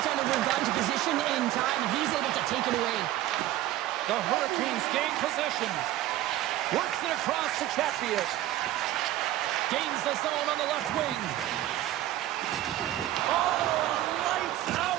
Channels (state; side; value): quieter; left; 14.3 dB